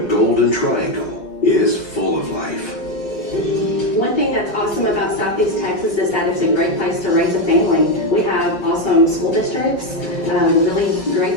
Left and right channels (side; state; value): right; late; 4.8 ms